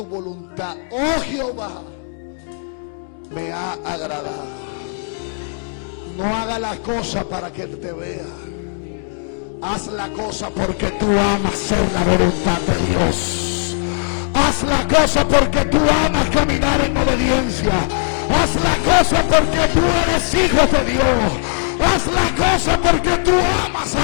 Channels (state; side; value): silent; right; digital silence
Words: voluntad, oh Jehová, me ha agradado. No haga la cosa para que te vea. Haz la cosa porque tú amas hacer la voluntad de Dios. Haz la cosa porque tú amas caminar en obediencia. Haz la cosa porque tú eres hijo de Dios. Haz la cosa porque tú amas